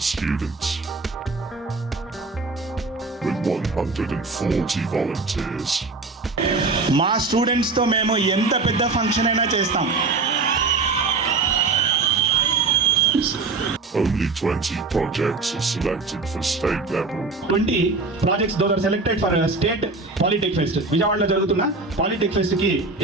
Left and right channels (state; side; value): quieter; left; 3.8 dB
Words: students. With 140 volunteers. మా స్టూడెంట్స్తో మేము ఎంత పెద్ద ఫంక్షన్ అయినా చేస్తాం. Only 20 projects are selected for state level. 20 projects those are selected for state Polytech Fest. విజయవాడలో జరుగుతున్న Polytech Fest కి